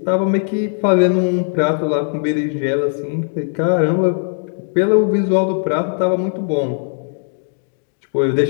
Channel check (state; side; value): silent; right; digital silence